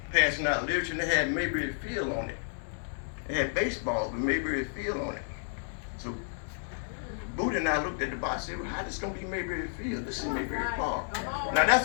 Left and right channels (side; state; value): right; silent; 57 dB below the other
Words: passing out literature, and they had Mayberry Field on it. They had baseball with Mayberry Field on it. So Booty and I looked at the box and said, well, how this gonna be Mayberry Field? This is Mayberry Park. Now